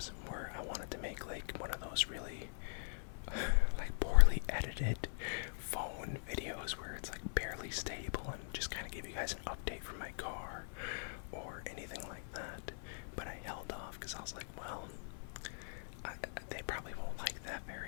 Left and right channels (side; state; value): right; silent; 50 dB below the other